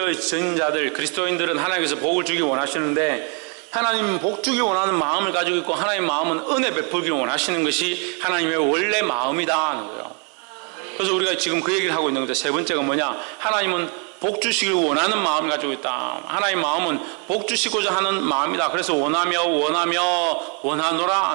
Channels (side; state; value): left; quieter; 37.7 dB